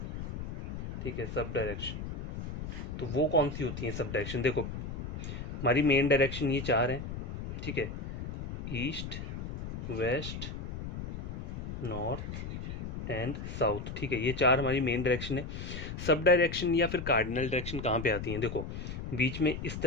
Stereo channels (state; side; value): noise; left; rumble, 6 dB below the sound